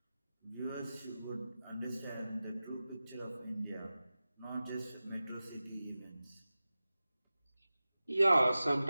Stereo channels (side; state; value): both; inverted; correlation -0.96